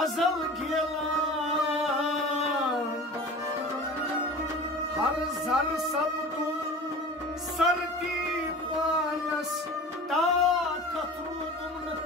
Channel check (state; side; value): normal; both; correlation 0.37